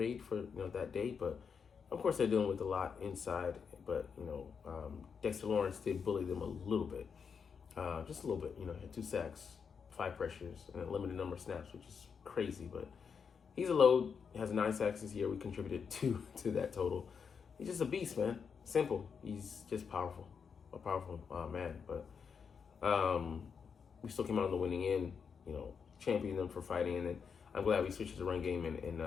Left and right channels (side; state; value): right; quieter; 6.3 dB